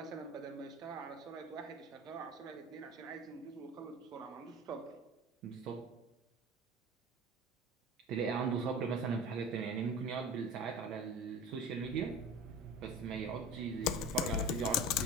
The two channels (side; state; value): both; normal; correlation 0.36